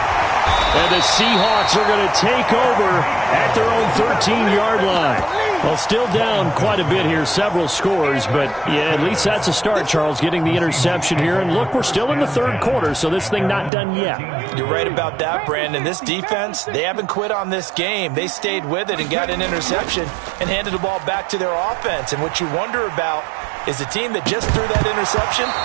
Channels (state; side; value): drops out; left; at 13.7 s